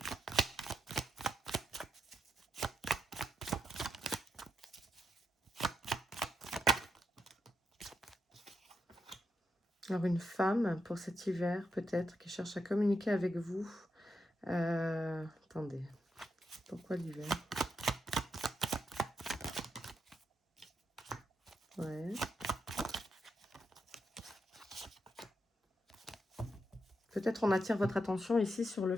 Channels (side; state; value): both; normal; correlation 0.82